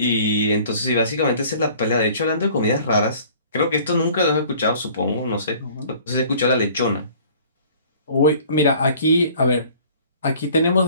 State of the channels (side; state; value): both; inverted; correlation -0.51